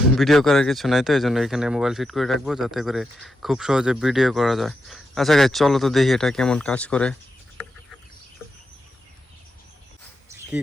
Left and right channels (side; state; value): both; normal; correlation 0.85